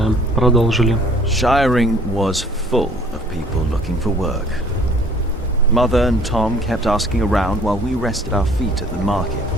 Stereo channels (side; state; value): both; normal; correlation 0.55